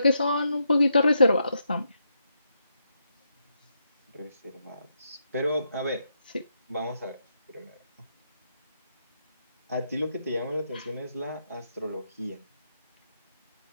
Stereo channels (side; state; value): both; inverted; correlation -0.80